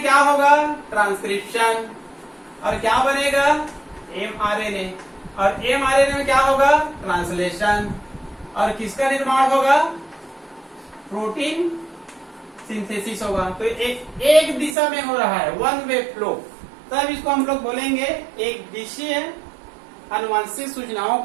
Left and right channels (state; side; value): drops out; left; at 14.8 s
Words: क्या होगा? ट्रांसक्रिप्शन, और क्या बनेगा? एमआरएनए, और एमआरएनए में क्या होगा? ट्रांसलेशन, और किसका निर्माण होगा? प्रोटीन सिंथेसिस होगा। तो एक दिशा में हो रहा है, वन वे फ्लो, तब इसको हम लोग बोलेंगे एक दिशीय आनुवांशिक सूचनाओं